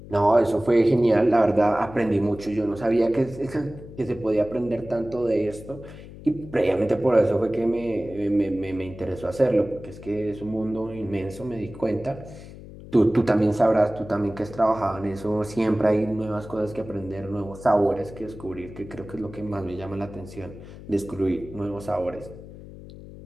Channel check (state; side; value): noise; left; hum, 16 dB below the sound